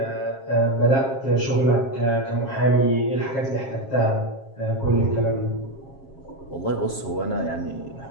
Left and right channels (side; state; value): right; late; 7.4 ms